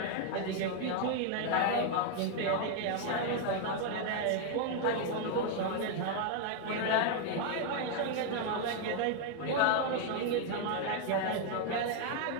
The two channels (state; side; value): different; both; correlation 0.00